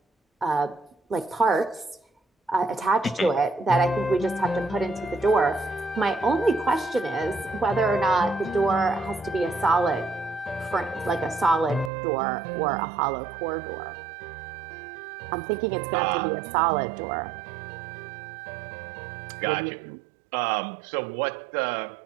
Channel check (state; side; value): drops out; left; at 11.9 s